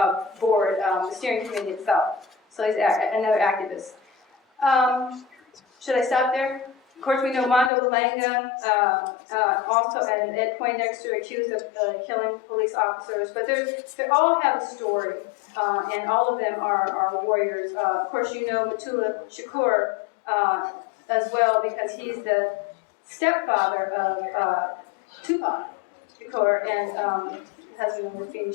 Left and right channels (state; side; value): drops out; right; at 7.7 s